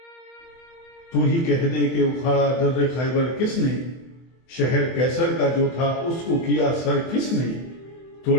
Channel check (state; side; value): late; right; 24 ms